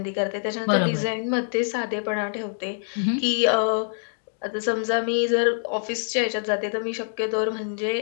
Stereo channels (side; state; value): right; silent; digital silence